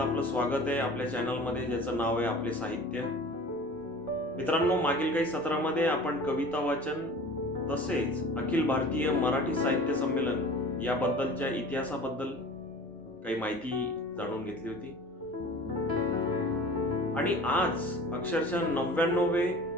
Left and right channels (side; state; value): both; normal; correlation 0.41